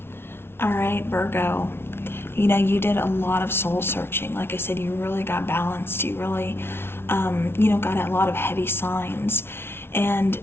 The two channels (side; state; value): right; late; 0.12 ms